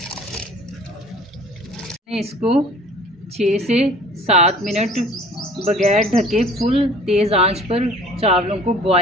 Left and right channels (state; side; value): normal; both; correlation 0.49